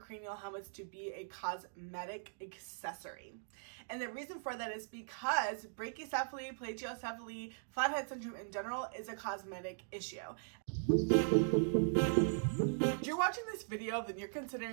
helmets to be a cosmetic accessory. And the reason for that is because brachycephaly, plagiocephaly, flathead syndrome in general is a cosmetic issue. If you're watching this video, then you're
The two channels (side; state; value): left; silent; digital silence